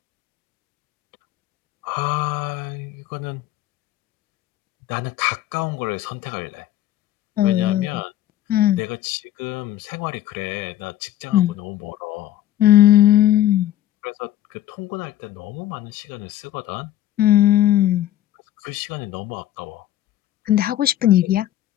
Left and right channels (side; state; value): right; quieter; 13.0 dB